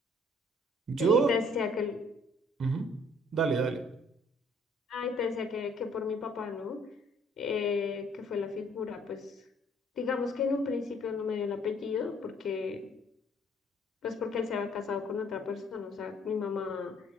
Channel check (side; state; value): both; normal; correlation 0.60